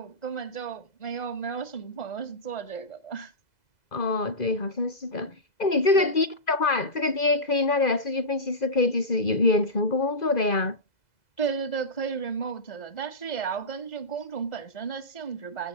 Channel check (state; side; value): late; right; 2.0 ms